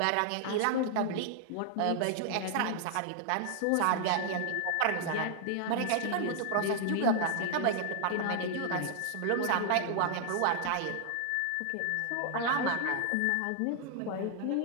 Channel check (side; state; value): both; different; correlation -0.01